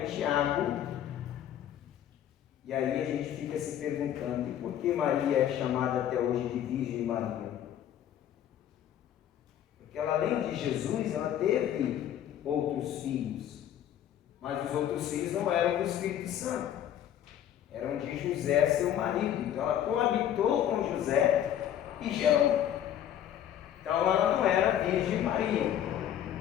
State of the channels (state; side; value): quieter; right; 10.7 dB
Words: Tiago. E aí a gente fica se perguntando, e por que Maria é chamada até hoje de Virgem Maria? Porque ela, além de Jesus, ela teve outros filhos. Mas os outros filhos não eram do Espírito Santo, eram de José, seu marido. Então ela coabitou com José e gerou. Então ela não era Virgem Maria.